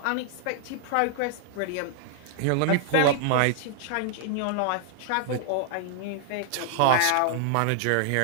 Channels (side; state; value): both; different; correlation 0.00